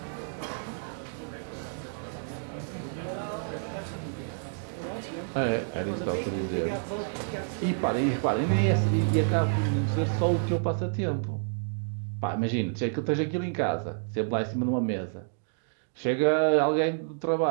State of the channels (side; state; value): left; silent; digital silence